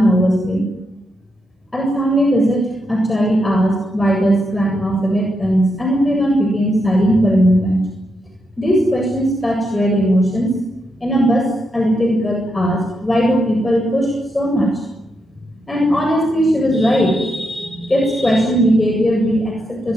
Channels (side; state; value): both; normal; correlation 0.82